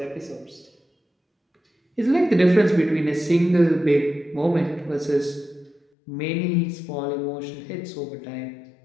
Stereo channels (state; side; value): drops out; right; at 5.8 s